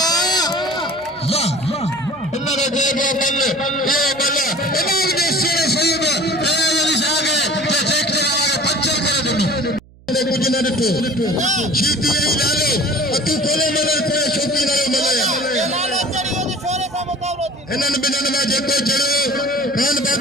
वाह इन्होंने दे गए बल्ले ए बल्ले इन्होंने दे शेरे सही में ए वाली आगे ते चेक करावे पंचर करे दुनु कुछ न देखो शीती नहीं लालो तू कोले मले कोई शौकी न मले इन्हनि बिन्हनि में जेको चढ़ो खान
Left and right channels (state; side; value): noise; right; hum, 26 dB below the sound